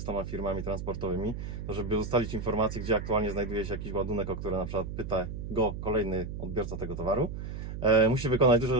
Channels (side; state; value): right; noise; hum, 7 dB below the sound